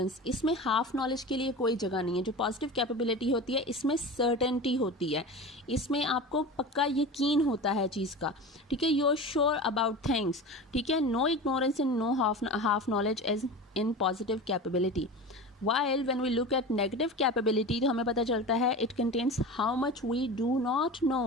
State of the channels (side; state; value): both; normal; correlation 0.30